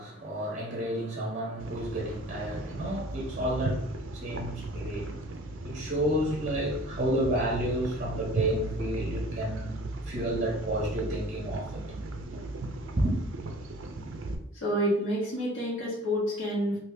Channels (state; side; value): normal; both; correlation 0.47